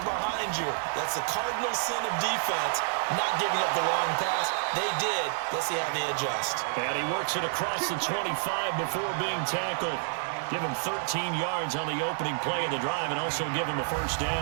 behind you. That's the cardinal sin of defense, not giving up the long pass. They did. Let's see how they adjust. And he works it across the 25 before being tackled. Give him 13 yards on the opening play of the drive and also give him a first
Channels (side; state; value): left; silent; digital silence